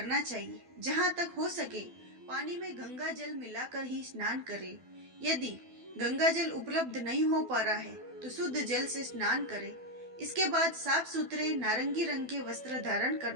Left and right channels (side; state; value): left; late; 12 ms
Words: चाहिए। जहाँ तक हो सके पानी में गंगा जल मिलाकर ही स्नान करें। यदि गंगा जल उपलब्ध नहीं हो पा रहा है तो शुद्ध जल से स्नान करें। इसके बाद साफ सुथरे नारंगी रंग के वस्त्र धारण